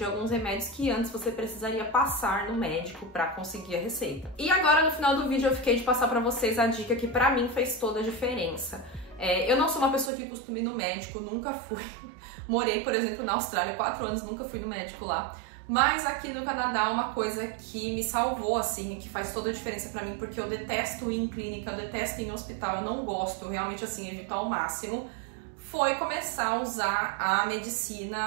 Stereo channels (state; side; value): drops out; left; at 10.1 s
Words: alguns remédios que antes você precisaria passar no médico para conseguir a receita. E agora no final do vídeo eu fiquei de passar para vocês a dica que para mim fez toda a diferença. Eu não sou uma pessoa que costuma ir no médico, nunca fui. Morei, por exemplo, na Austrália 4 anos, nunca fui no médico lá. Mas aqui no Canadá, uma coisa que me salvou, assim, que faz toda a diferença pra mim, porque eu detesto ir em clínica, eu detesto ir em hospital, eu não gosto, realmente, assim, evito ao máximo, foi começar a usar a